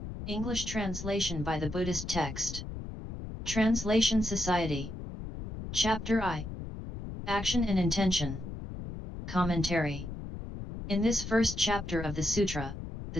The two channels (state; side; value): noise; left; rumble, 9 dB below the sound